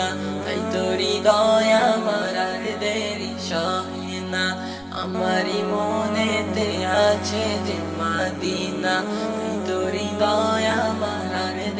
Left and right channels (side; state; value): both; identical; correlation 1.00